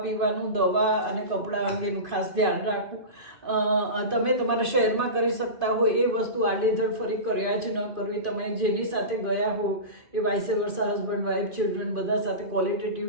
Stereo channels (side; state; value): left; late; 2.5 ms